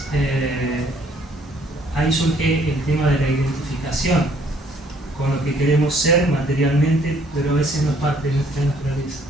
ahí surge el tema de la identificación con lo que queremos ser materialmente, pero a veces no es parte de nuestra naturaleza.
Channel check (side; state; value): both; normal; correlation 0.63